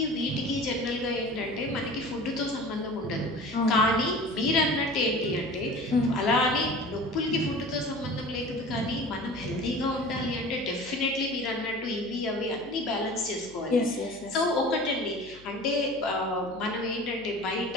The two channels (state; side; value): noise; left; hum, 23 dB below the sound